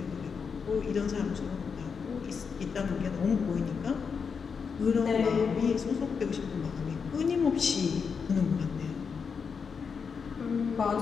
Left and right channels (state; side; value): quieter; right; 5.9 dB